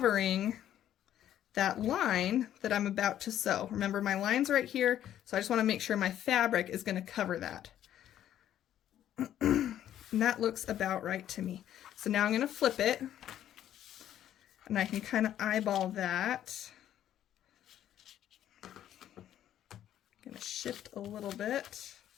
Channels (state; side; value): quieter; right; 11.3 dB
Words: that line that I'm about to sew. Remember, my line's right here, so I just want to make sure my fabric is going to cover that. And that looks about right to me. So now I'm going to flip it, and I can kind of eyeball that. I'm going to shift a little bit.